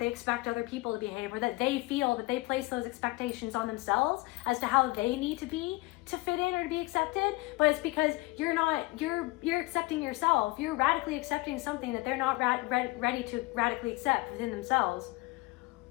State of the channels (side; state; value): right; quieter; 22.0 dB